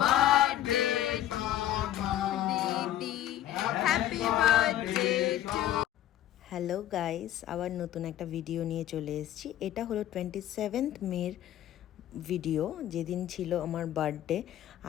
to Didi. Happy birthday to. Hello guys, আবার নতুন একটা video নিয়ে চলে এসেছি। এটা হলো 27th মের ভিডিও, যেদিন ছিল আমার বার্থডে।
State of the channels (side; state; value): right; quieter; 12.6 dB